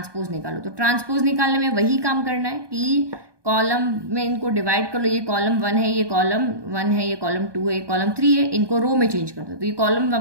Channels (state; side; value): late; left; 1.2 ms